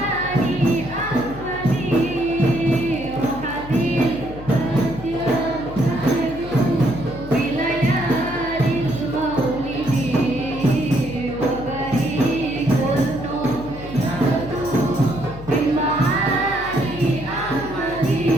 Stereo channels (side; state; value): left; noise; hum, 14 dB below the sound